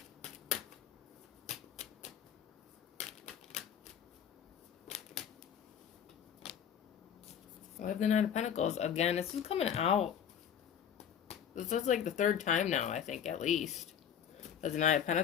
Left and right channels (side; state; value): right; quieter; 8.6 dB